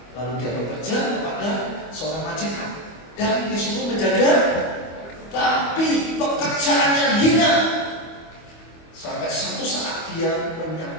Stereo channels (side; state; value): right; late; 25 ms